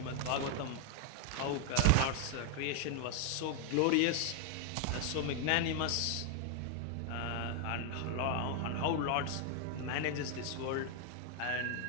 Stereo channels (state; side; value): different; both; correlation 0.00